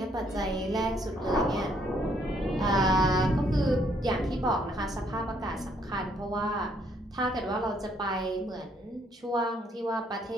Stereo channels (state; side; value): normal; both; correlation 0.69